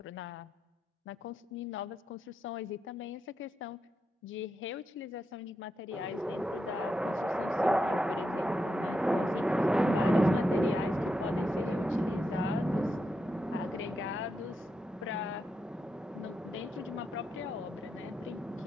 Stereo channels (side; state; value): both; normal; correlation 0.85